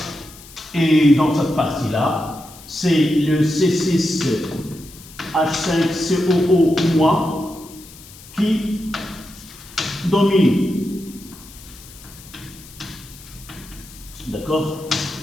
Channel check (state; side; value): noise; left; hiss, 19 dB below the sound